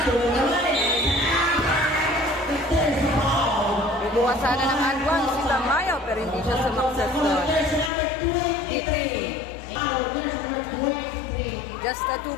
Ibuha sana ng Anwan si Tamayo pero hindi siya sumakses doon. Just a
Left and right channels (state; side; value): drops out; right; at 7.9 s